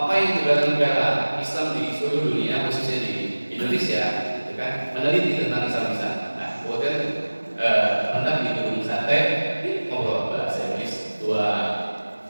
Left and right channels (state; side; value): inverted; both; correlation -1.00